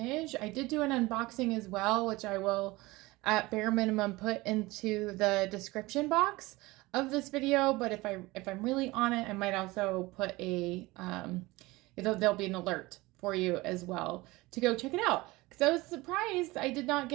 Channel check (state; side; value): quieter; left; 21.2 dB